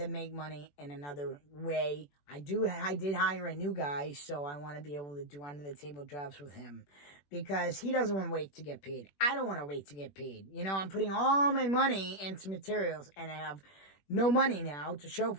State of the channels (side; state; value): right; late; 21 ms